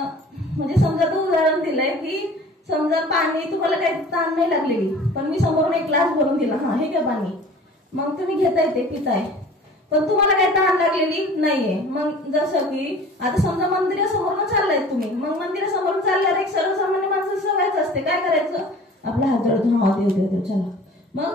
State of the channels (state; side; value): normal; both; correlation 0.45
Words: म्हणजे समजा तो उदाहरण दिलंय की समजा पाणी तुम्हाला काही ताण नाही लागलेली, पण मी समोरून एक ग्लास भरून दिला, हा हे घ्या पाणी, मग तुम्ही घेताय ते पिताय, पण तुम्हाला काही ताण लागलेली नाहीये. मग जसं की आता समजा मंदिरासमोरून चाललाय तुम्ही, मग मंदिरासमोरून चालल्यावर एक सर्वसामान्य माणसं सवयच असते, काय करायचं, आपला हात जोडतो, हा देव देव देव चला.